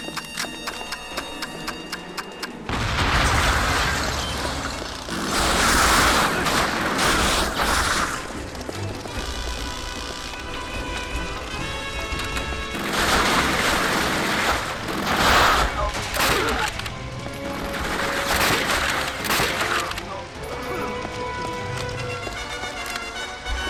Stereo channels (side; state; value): both; identical; correlation 1.00